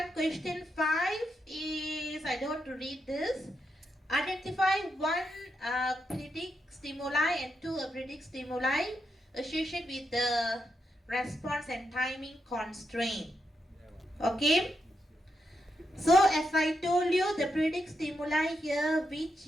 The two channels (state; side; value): normal; both; correlation 0.83